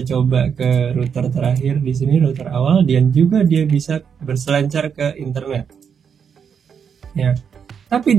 coba ke router terakhir di sini, router awal, dan juga dia bisa berselancar ke internet. Ya.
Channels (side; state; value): left; quieter; 7.1 dB